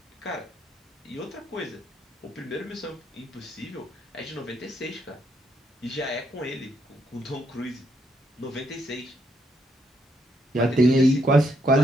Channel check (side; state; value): both; normal; correlation 0.75